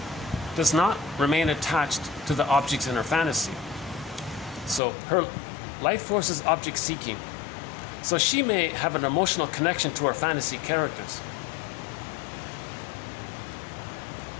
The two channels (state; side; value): drops out; right; at 4.8 s